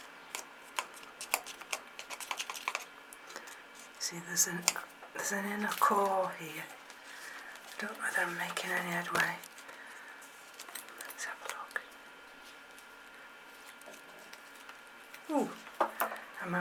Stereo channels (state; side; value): identical; both; correlation 1.00